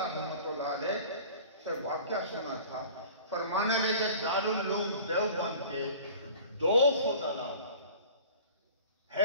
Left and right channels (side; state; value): both; inverted; correlation -0.43